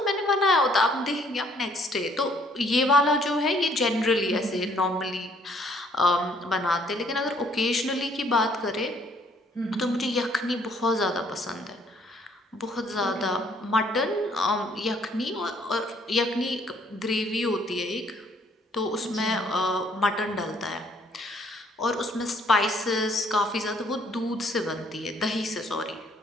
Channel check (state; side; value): normal; both; correlation 0.63